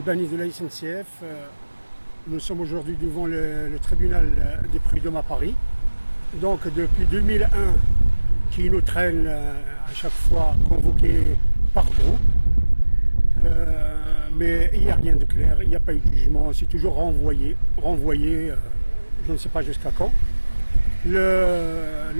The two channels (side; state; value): both; inverted; correlation -1.00